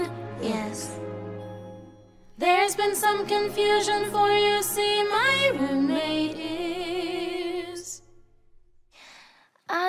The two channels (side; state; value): both; identical; correlation 1.00